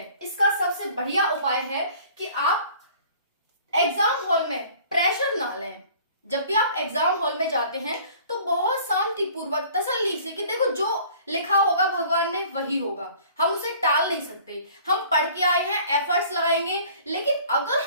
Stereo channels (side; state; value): both; inverted; correlation -0.50